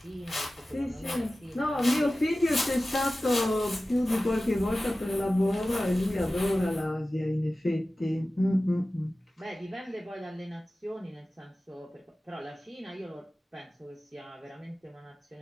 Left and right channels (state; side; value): normal; both; correlation 0.96